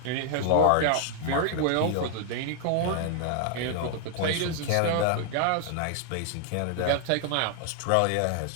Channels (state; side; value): different; both; correlation 0.00